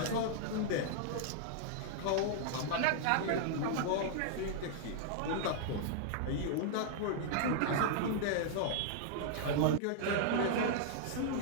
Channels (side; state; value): both; different; correlation -0.01